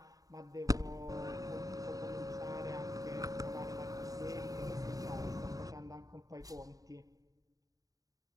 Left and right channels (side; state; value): left; late; 0.17 ms